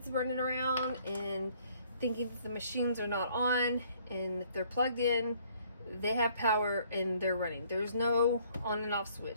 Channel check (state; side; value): inverted; both; correlation -0.62